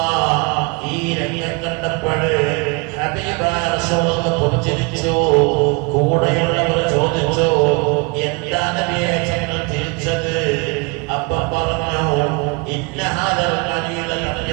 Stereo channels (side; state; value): left; quieter; 29.3 dB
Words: ഈ രംഗം കണ്ടപ്പോൾ ഹബീബായ റസൂലുള്ളാഹി പുഞ്ചിരിച്ചു. കൂടെയുള്ളവർ ചോദിച്ചു, എന്താ നബിയെ ഞങ്ങൾ തിരിച്ചത്? അപ്പം പറഞ്ഞു, ഇന്ന ഹാദൽ ഖലീല